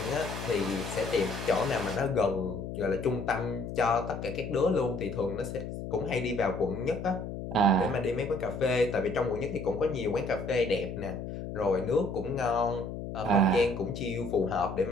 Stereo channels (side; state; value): left; noise; hum, 7 dB below the sound